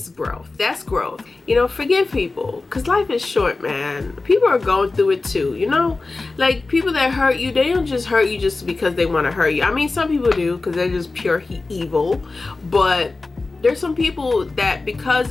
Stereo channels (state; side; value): quieter; right; 3.6 dB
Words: growth. That's growth. You know, forgive people, because life is short, man. People are going through it too, you know? Like, people that hurt you, they don't just hurt you just because they want to hurt you. I mean, some people do because they're just pure evil, but there's some people that